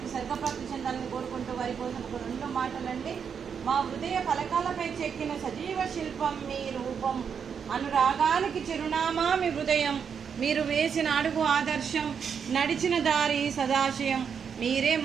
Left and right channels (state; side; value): quieter; left; 6.9 dB